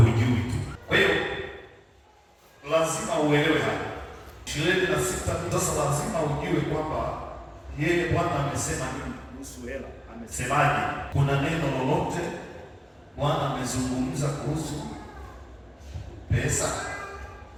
tu. Kwa hiyo lazima uelewe hapa 26. Sasa lazima ujue kwamba yeye Bwana amesema nini kuhusu hela, amesemaje. Kuna neno lolote Bwana amezungumza kuhusu pesa,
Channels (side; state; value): both; identical; correlation 1.00